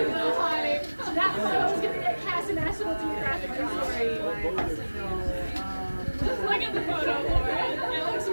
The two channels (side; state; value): both; inverted; correlation -1.00